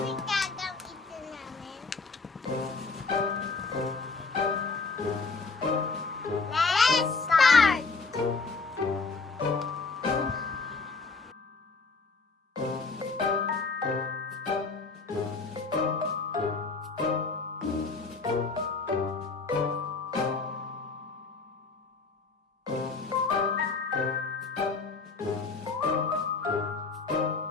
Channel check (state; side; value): quieter; right; 4.2 dB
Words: yung gagamitin namin. Let's start!